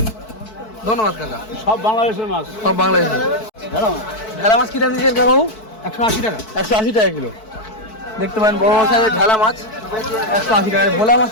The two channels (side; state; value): right; late; 4.6 ms